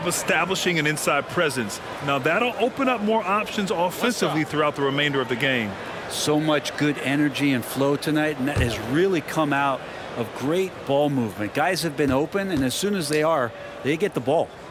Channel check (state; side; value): identical; both; correlation 1.00